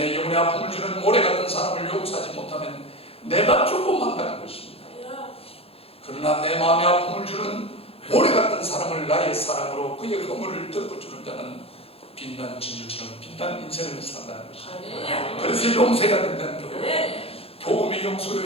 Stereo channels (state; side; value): late; right; 0.28 ms